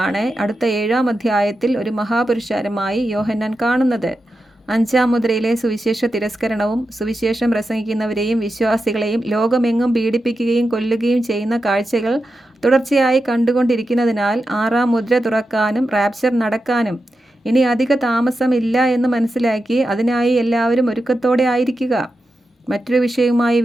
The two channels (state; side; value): normal; both; correlation 0.90